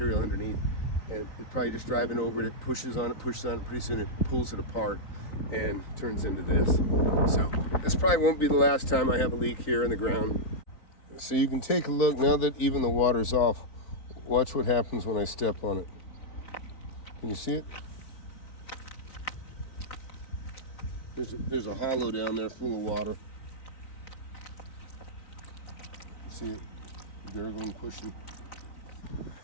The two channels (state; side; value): late; right; 3.9 ms